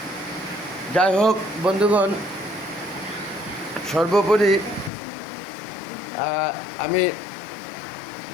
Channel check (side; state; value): right; drops out; at 4.9 s